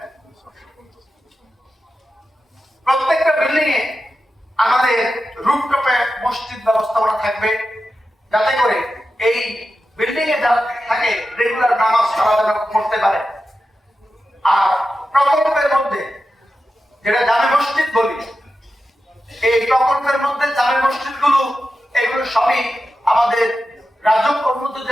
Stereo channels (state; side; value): normal; both; correlation 0.91